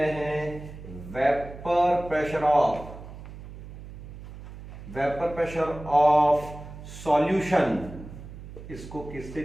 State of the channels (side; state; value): right; noise; hum, 14 dB below the sound